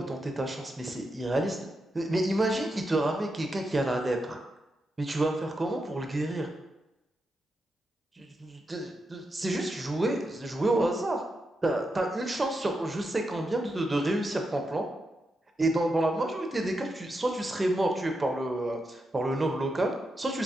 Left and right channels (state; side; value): normal; both; correlation 0.86